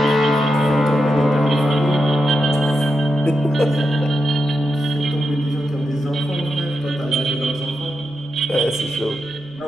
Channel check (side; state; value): right; noise; rumble, 29 dB below the sound